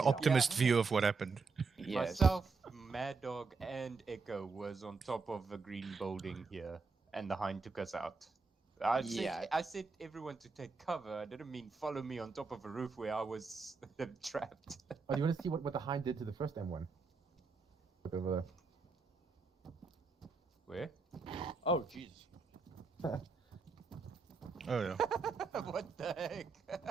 optimist view of what happened. Myself, Mad Dog, and Echo was on top of the green building here, and the Hind took us out. I said everyone to take cover. I didn't mean follow me on top of a roof where I was trapped. Oh, you want to see what the Hind did to the first M1? Look over there. Where? Oh, jeez. Oh, yeah. What the heck?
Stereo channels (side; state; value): left; quieter; 4.5 dB